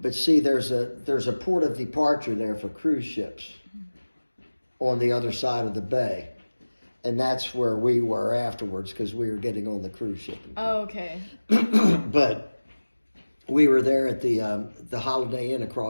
But see, there's a port of departure there for cruise ships on the other side of the bay. And that's where we were afterwards because we were getting on the cruise ship. Oh, okay. But we were there at the Holiday Inn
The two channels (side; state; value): both; inverted; correlation -1.00